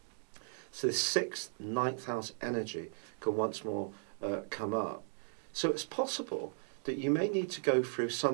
So this 6th, 9th house energy can once more come up. So it's possible that you may need to go through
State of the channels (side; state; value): left; silent; digital silence